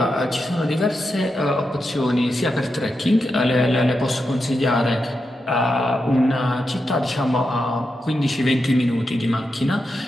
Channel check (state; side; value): normal; both; correlation 0.87